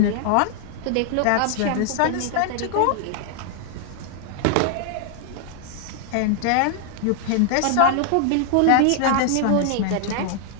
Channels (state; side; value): different; both; correlation 0.00